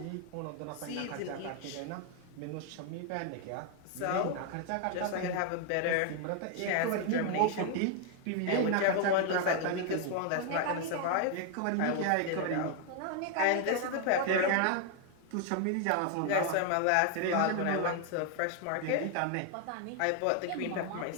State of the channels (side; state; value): both; different; correlation 0.00